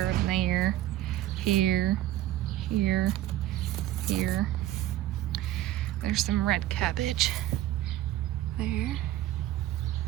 and there, here, here, here. There's some red cabbage there.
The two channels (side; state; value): left; quieter; 14.1 dB